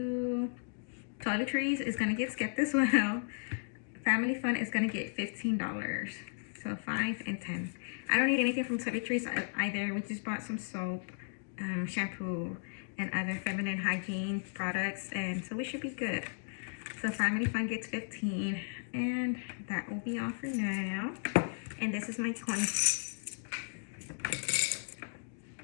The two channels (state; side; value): silent; right; digital silence